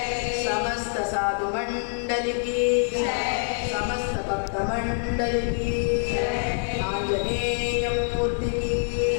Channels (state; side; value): silent; right; digital silence